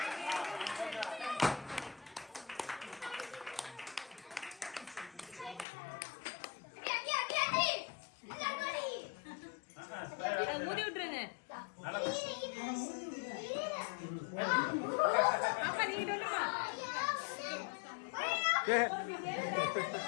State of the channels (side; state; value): right; drops out; at 5.7 s